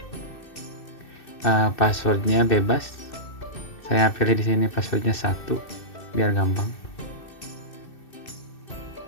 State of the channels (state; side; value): late; right; 2.6 ms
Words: Passwordnya bebas. Saya pilih di sini passwordnya 1 biar gampang.